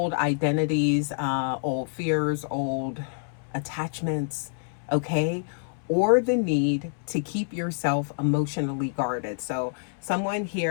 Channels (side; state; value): right; silent; 60 dB below the other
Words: identities, old fears, old attachments, okay? Or the need to keep yourself emotionally guarded. So someone